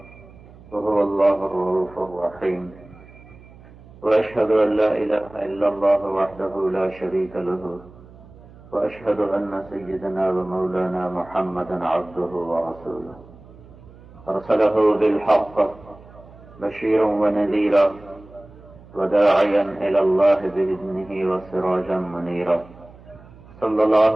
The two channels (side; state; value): right; noise; hum, 22 dB below the sound